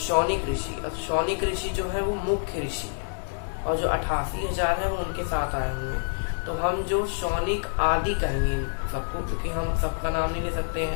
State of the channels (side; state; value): right; silent; 60 dB below the other